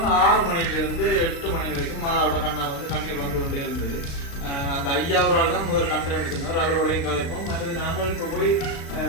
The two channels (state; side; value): late; right; 36 ms